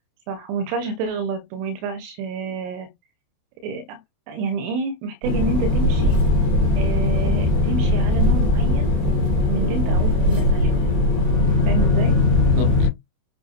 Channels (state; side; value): late; left; 28 ms